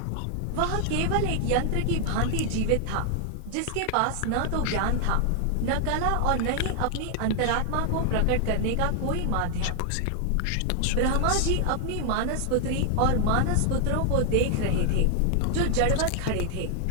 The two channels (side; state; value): both; different; correlation 0.00